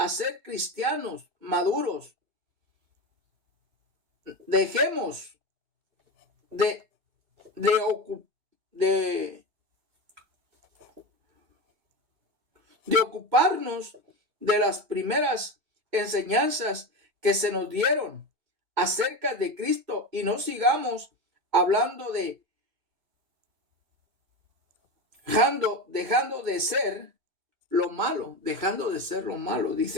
ser cristianos maduros. Dejemos de ocuparnos de las primeras enseñanzas que se nos dieron acerca de Cristo y no sigamos hablando dejando de ser lo malo,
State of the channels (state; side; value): late; left; 2.2 ms